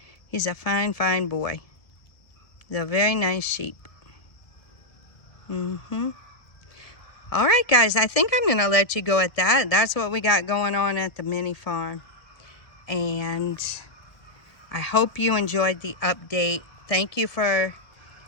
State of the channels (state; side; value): late; right; 1.7 ms